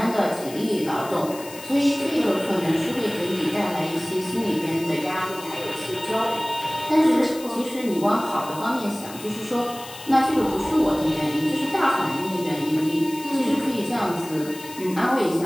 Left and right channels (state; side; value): noise; left; hiss, 15 dB below the sound